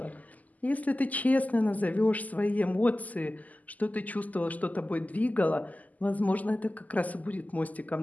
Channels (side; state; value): right; late; 0.078 ms